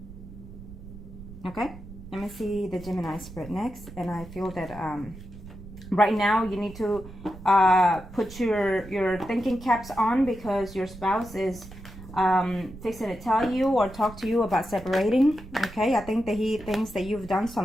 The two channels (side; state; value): right; noise; rumble, 15 dB below the sound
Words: Okay, let me see the Gemini spread next, and I feel that right now you need to put your thinking caps on, because your spouse is fixing to tell you or talk to you about separating. Okay, I think that he thinks that you've done